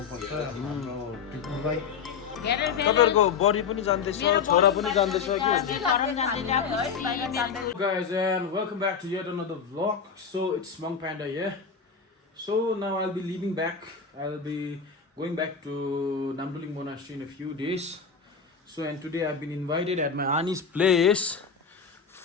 हाम्रो टिपुलाई। तपाईहरुको बडी पनि जान्दैछ, छोरा पनि जान्दैछ कि? Guys, and welcome back to yet another vlog. So it's Monk Panda here. So now I'll be leaving back. I'll be going back to Namduling Monastery in a few days. So and today I've been invited at my auntie's place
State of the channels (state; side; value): quieter; right; 6.2 dB